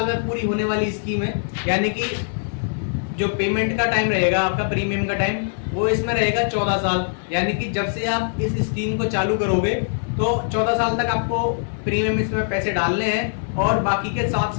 में पूरी होने वाली स्कीम है। यानी कि जो पेमेंट का टाइम रहेगा, आपका प्रीमियम का टाइम, वो इसमें रहेगा 14 साल। यानी कि जब से आप इस स्कीम को चालू करोगे तो 14 साल तक आपको प्रीमियम इसमें पैसे डालने हैं और बाकी के 7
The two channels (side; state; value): right; silent; 64 dB below the other